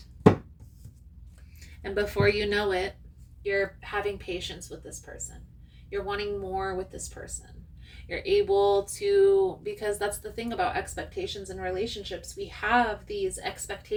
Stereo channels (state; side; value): identical; both; correlation 1.00